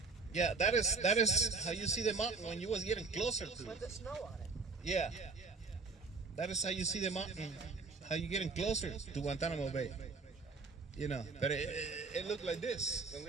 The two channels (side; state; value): left; quieter; 4.3 dB